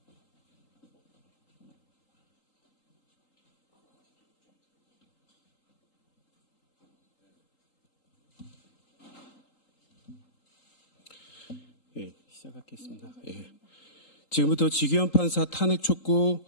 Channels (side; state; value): right; late; 3.8 ms